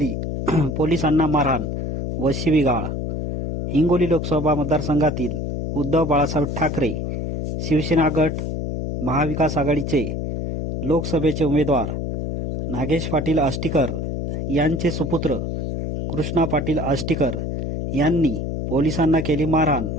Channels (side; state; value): left; noise; hum, 3 dB below the sound